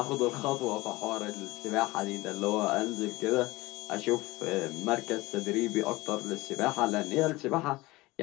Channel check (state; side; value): quieter; right; 20.5 dB